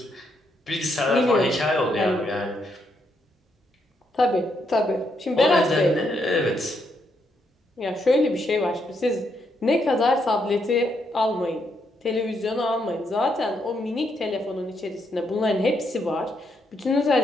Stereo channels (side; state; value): both; normal; correlation 0.77